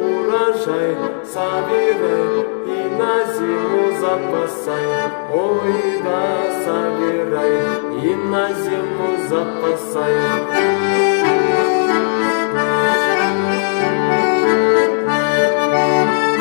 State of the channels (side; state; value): right; silent; digital silence